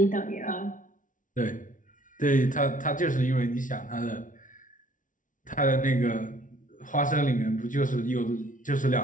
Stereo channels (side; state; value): right; late; 0.38 ms